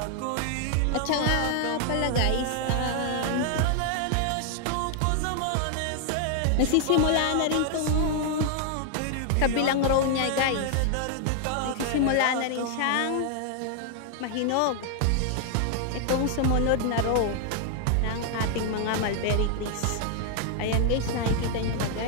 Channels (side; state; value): both; different; correlation 0.00